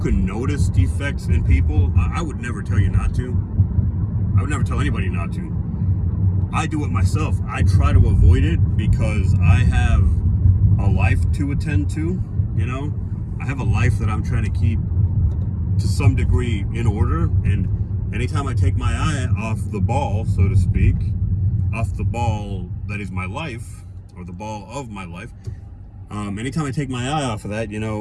notice defects in people. I would never tell you not to. I would never tell anybody not to. I do it myself. I try to avoid it because I have a life to attend to, you know. I have a life that I'm trying to keep to some degree in order, and anytime I take my eye off the ball, so to speak, off the ball that is my life, or the ball of my life, anytime I take my eye off of that, you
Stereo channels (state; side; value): identical; both; correlation 1.00